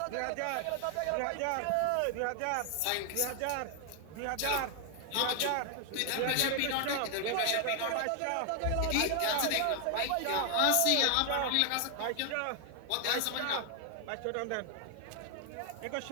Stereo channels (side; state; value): both; different; correlation 0.00